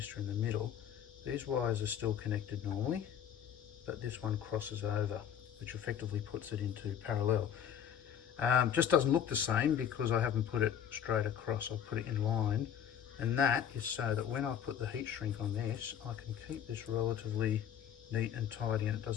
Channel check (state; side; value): quieter; right; 9.1 dB